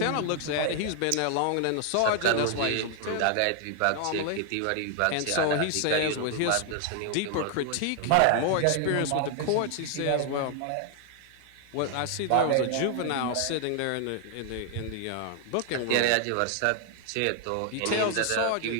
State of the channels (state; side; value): different; both; correlation 0.00